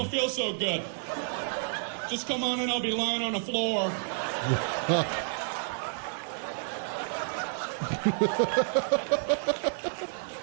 feel so good. Just come on in, I'll be lying on the floor.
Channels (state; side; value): silent; left; 58 dB below the other